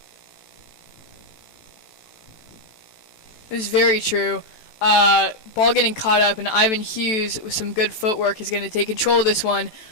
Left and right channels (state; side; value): late; right; 18 ms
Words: It is very true. Ball getting caught up, and Ivan Hughes with some good footwork is going to take control of this one.